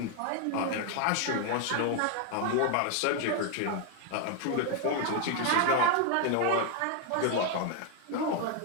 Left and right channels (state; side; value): different; both; correlation 0.01